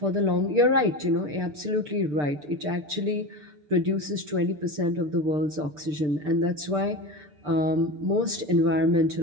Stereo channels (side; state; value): left; late; 6.7 ms